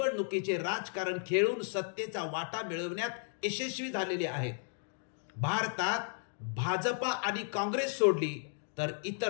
राजकारण खेळून सत्तेचा वाटा मिळवण्यात यशस्वी झालेले आहेत. भारतात भाजपा आणि काँग्रेस सोडली तर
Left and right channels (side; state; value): right; silent; digital silence